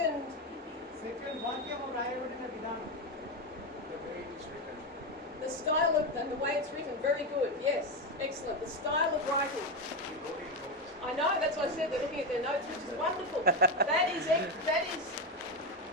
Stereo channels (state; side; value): normal; both; correlation 0.12